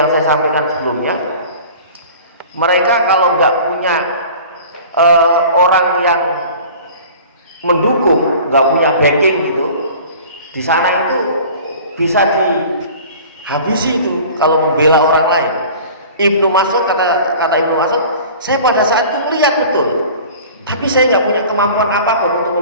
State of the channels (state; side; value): inverted; both; correlation -0.43